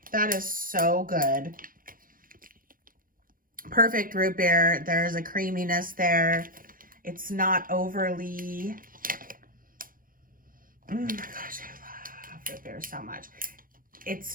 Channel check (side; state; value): left; late; 0.41 ms